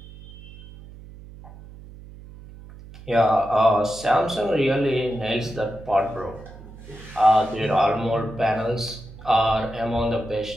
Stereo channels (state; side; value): noise; right; hum, 17 dB below the sound